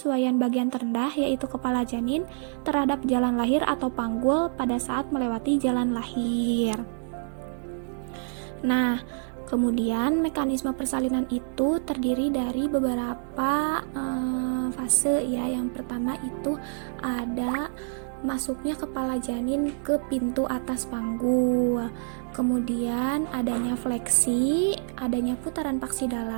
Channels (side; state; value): left; silent; digital silence